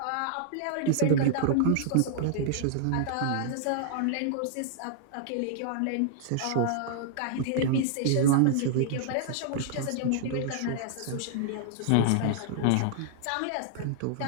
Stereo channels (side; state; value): both; different; correlation -0.01